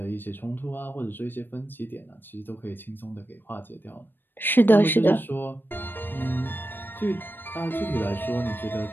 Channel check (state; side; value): late; right; 0.095 ms